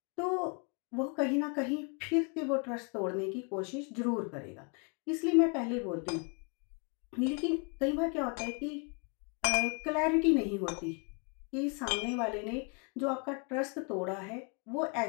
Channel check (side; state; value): right; quieter; 36.3 dB